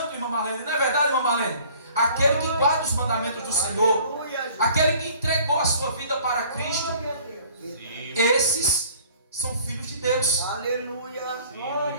irmã Marlene, não é verdade, irmã Marlene? Aquele que guarda os mandamentos do Senhor, Aleluia, Jesus. aquele que entregou a sua vida para Cristo, Glória a Deus. Sim. esses são filhos de Deus. Aleluia. Sim,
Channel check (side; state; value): both; inverted; correlation -0.52